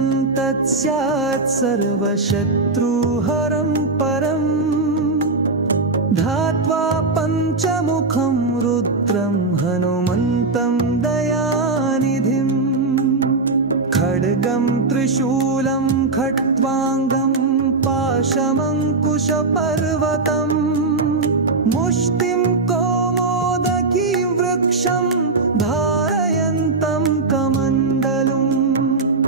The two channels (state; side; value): quieter; left; 3.6 dB